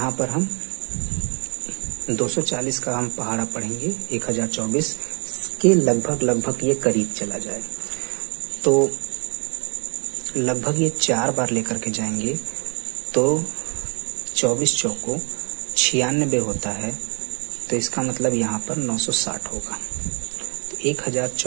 पर हम 240 का हम पहाड़ा पढ़ेंगे, 1024 के लगभग ये करीब चला जाए, तो लगभग ये 4 बार लेकर के जाएंगे तो 24 चौको 96 होता है। तो इसका मतलब यहाँ पर 960 होगा। तो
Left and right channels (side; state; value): left; quieter; 34.7 dB